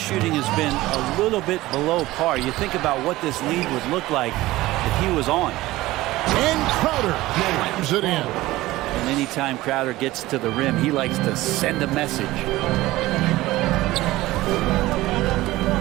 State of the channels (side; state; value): left; quieter; 17.8 dB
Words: has been a little bit below par. You think about what this lead would look like if he was on. And Crowder slams it in. And anytime Crowder gets to the rim, he likes to send a message.